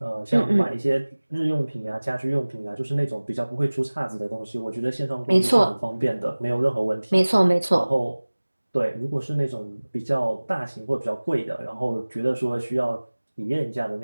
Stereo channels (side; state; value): both; inverted; correlation -1.00